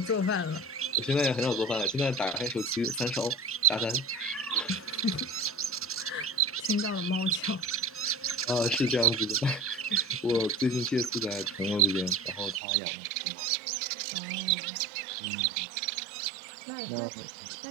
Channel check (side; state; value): left; drops out; at 12.6 s